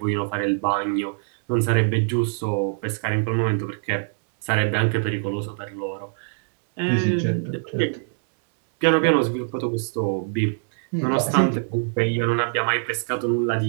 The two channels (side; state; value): left; silent; digital silence